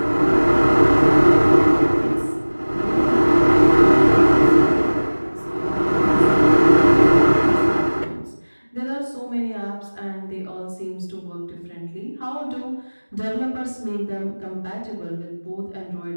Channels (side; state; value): both; inverted; correlation -1.00